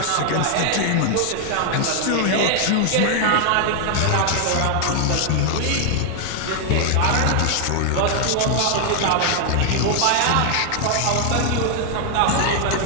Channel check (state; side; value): different; both; correlation 0.00